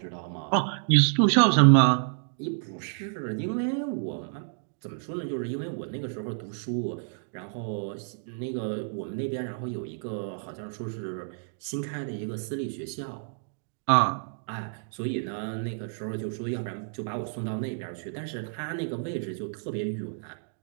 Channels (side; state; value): left; silent; digital silence